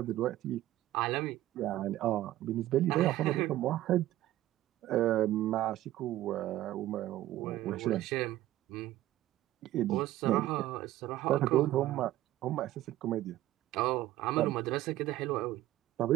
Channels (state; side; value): quieter; left; 14.8 dB